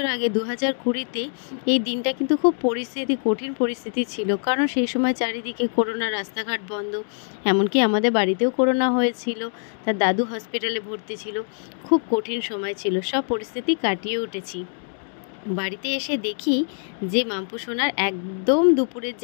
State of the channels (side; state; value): right; silent; 63 dB below the other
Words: আগে ২০২০-তে এই দিনটা কিন্তু খুব কঠিন পরিস্থিতি ছিল। কারণ সেই সময় চারিদিকে করোনা, রাস্তাঘাট বন্ধ, এমনকি আমাদের বাড়িতেও করোনা হয়েছিল। তার দাদু হসপিটালে ভর্তি ছিল। খুব কঠিন সময় ছিল, সব পরিস্থিতি কাটিয়ে উঠেছি। বাড়িতে এসে দেখি যে মাম্পু সোনার একদম দুপুরের